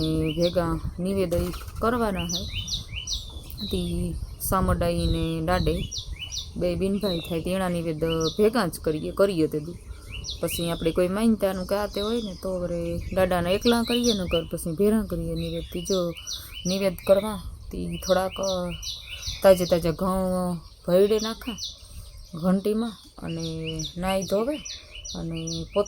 ભેગા નિવેદન કરવાના છે તે સામડાઈ ને દાડે 2 બિનભાઈ થાય તેના નિવેદ ભેગા જ કરીએ તે પછી આપણે કોઈ માનતાનું કે આ તે હોય ને તો વરે દાદાને એકલા કરીએ ને કર પછી ભેરા કરીએ નિવેદથી જો નિવેદ કરવા તે થોડાક તાજા ઘઉં ભરડે નાખા ઘંટીમાં અને નાહી ધોવે અને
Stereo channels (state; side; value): identical; both; correlation 1.00